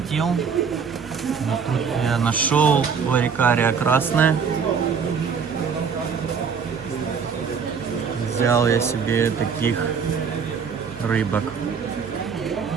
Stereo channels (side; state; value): left; quieter; 6.2 dB